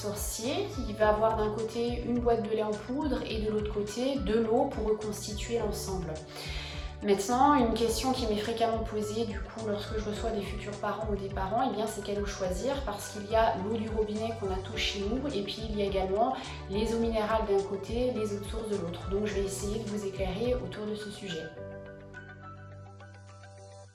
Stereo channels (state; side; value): identical; both; correlation 1.00